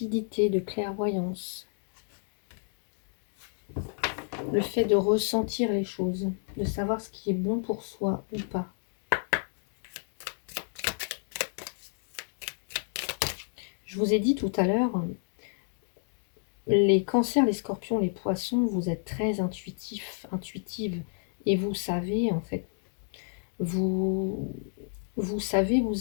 de clairvoyance. Le fait de ressentir les choses, de savoir ce qui est bon pour soi ou pas. Je vous ai dit tout à l'heure, les cancers, les scorpions, les poissons, vous êtes très intuitifs, intuitives. Et vous savez, en fait, vous, vous savez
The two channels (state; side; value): silent; right; digital silence